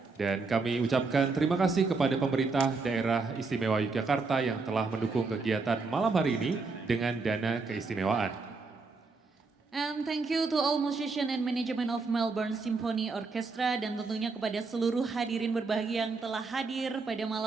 Dan kami ucapkan terima kasih kepada pemerintah daerah istimewa Yogyakarta yang telah mendukung kegiatan malam hari ini dengan dana keistimewaan. And thank you to all musician and management of Melbourne Symphony Orchestra dan tentunya kepada seluruh hadirin berbahagia yang telah hadir pada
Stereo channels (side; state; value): left; quieter; 4.2 dB